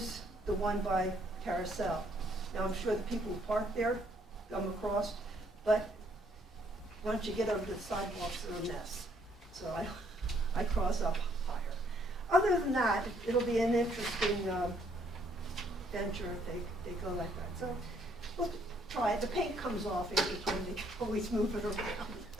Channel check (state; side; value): normal; both; correlation 0.67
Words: the one by Carousel. Now, I'm sure the people who park there come across, but once you get over to the sidewalks, they're a mess. So I cross up higher. Other than that, it'll be an interesting venture if they go like that. So we'll try it. The paint comes off every time they always move it